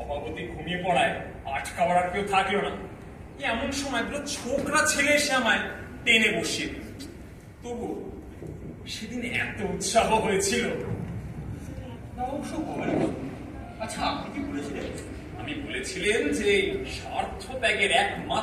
ঘুমিয়ে পড়ায় আটকাবার আর কেউ থাকলো না। এমন সময় দুটো ছোকরা ছেলে এসে আমায় টেনে বসিয়ে দিল। তবু সেদিন এত উৎসাহ হয়েছিল। আচ্ছা, আপনি কি বলেছিলেন? আমি বলেছিলেন যে স্বার্থ ত্যাগের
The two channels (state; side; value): identical; both; correlation 1.00